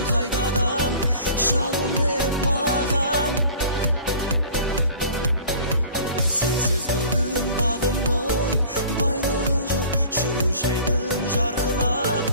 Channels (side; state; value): both; inverted; correlation -0.46